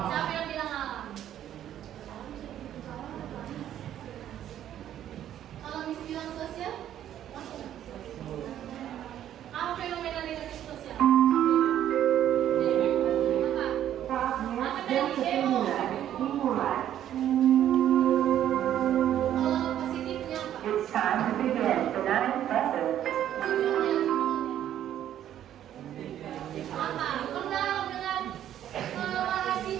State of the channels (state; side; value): quieter; left; 11.1 dB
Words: yang bilang alam? Kalau